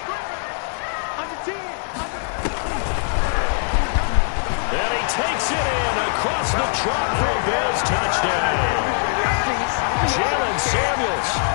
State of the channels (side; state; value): right; silent; 64 dB below the other